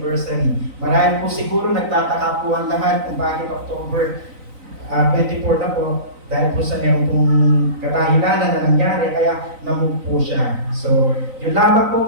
Marami po siguro nagtataka po ang lahat kung bakit October 24 na po. Dahil po sa meron pong kadahilanan na nangyari, kaya namove po siya. So, yun lamang po,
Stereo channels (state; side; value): late; left; 3.9 ms